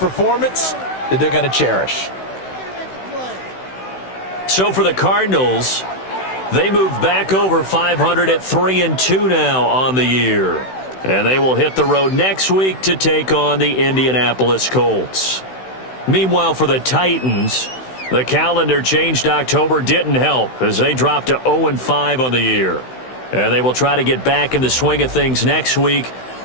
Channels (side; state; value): right; late; 16 ms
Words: that they're going to cherish. So for the Cardinals, they move back over 500 at 3-2 now on the year. And they will hit the road next week to take on the Indianapolis Colts. Meanwhile, for the Titans, the calendar changed October didn't help as they dropped to 0-5 on the year. And they will try to get back in the swing of things next week